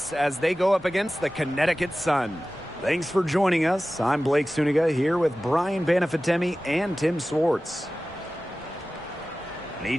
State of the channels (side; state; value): both; normal; correlation 0.96